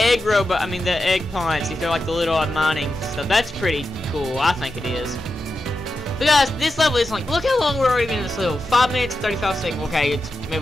robot, the egg plants, if they're like the little mining stuff. That's pretty cool, I think it is. But guys, this level is like, look how long we're already been in this level. 5 minutes, 35 seconds. Okay, it's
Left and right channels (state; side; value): normal; both; correlation 0.90